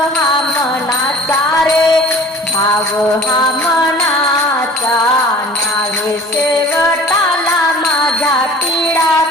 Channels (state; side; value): normal; both; correlation 0.44